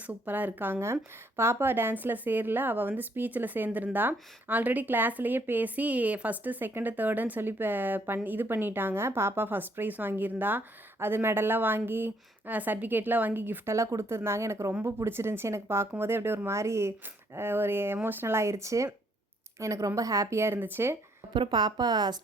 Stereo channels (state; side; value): normal; both; correlation 0.68